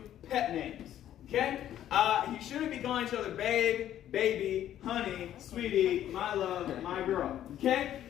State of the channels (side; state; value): right; quieter; 11.6 dB